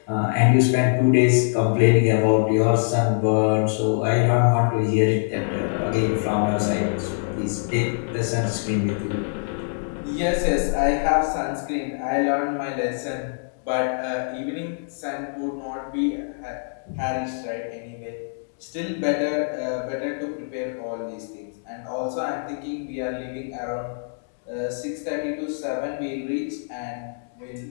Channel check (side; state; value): right; silent; digital silence